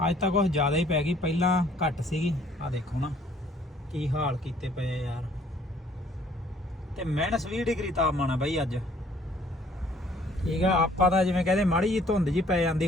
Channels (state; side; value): normal; both; correlation 0.60